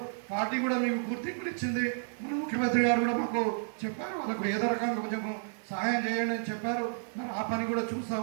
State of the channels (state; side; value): silent; left; 57 dB below the other